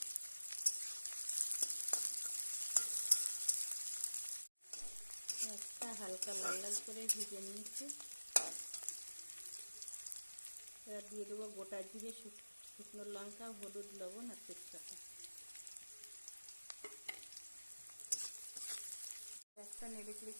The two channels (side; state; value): both; inverted; correlation -1.00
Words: পেঁয়াজটা হালকা লাল লাল করে ভেজে নিয়েছি। এবার দিয়ে দেবো গোটা জিরে, শুকনো লঙ্কা, হলুদ, লবণ আর তেজপাতা। একটা নেড়ে চেড়ে